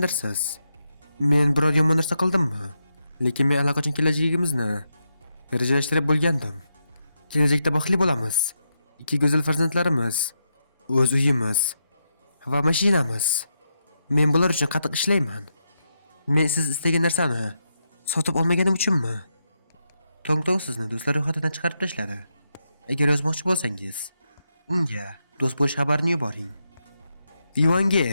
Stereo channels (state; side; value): inverted; both; correlation -0.84